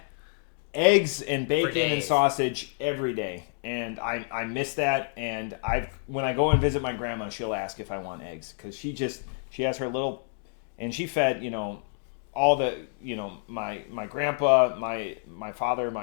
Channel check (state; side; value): silent; right; digital silence